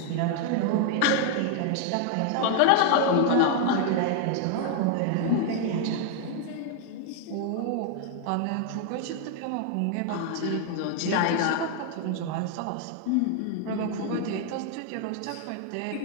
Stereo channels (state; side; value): different; both; correlation 0.00